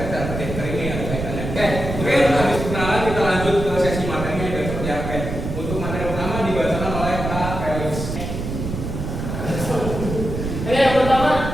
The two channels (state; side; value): noise; right; rumble, 5 dB below the sound